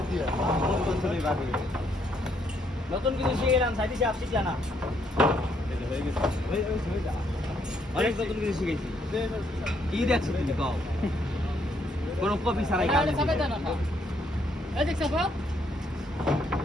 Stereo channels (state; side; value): normal; both; correlation 0.72